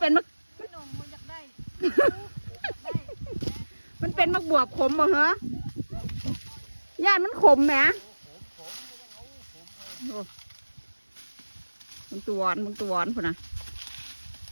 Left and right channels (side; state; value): both; inverted; correlation -1.00